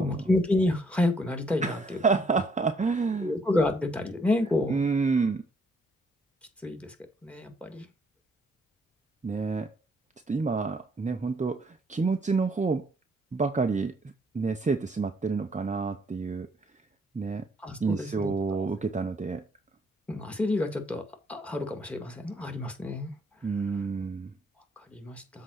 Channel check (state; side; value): normal; both; correlation 0.68